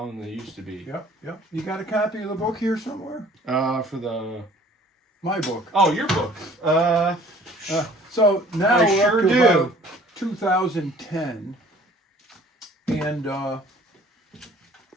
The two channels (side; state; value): both; normal; correlation 0.52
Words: than they used to be. Yep. You got a copy of the book here somewhere? My book. Oh, your book. So now I we're sure up to do. about 2010, and